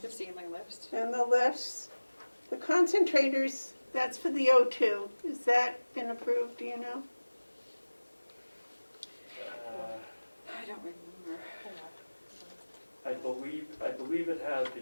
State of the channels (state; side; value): inverted; both; correlation -1.00